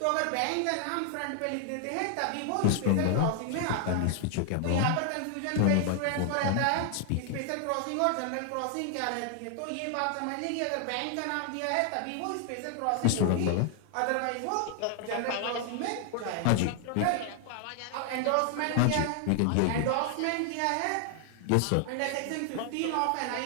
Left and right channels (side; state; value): both; different; correlation 0.00